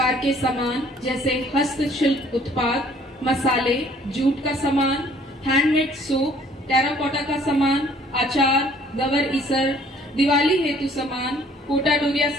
के सामान जैसे हस्तशिल्प उत्पाद, मसाले, जूट का सामान, हैंडमेड सूप, टेराकोटा का सामान, अचार, गवर ईसर, दिवाली हेतु सामान, कोटा डोरिया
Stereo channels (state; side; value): normal; both; correlation 0.58